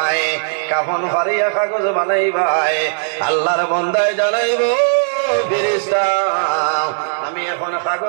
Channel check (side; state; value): left; silent; 65 dB below the other